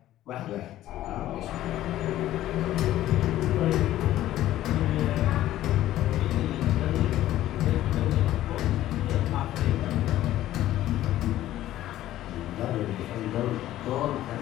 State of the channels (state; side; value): quieter; right; 13.8 dB